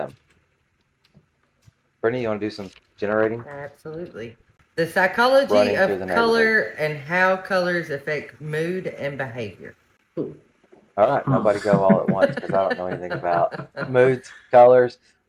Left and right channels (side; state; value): both; identical; correlation 1.00